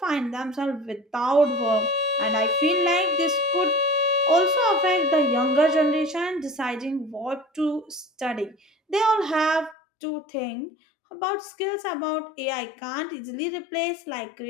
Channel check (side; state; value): right; drops out; at 9.8 s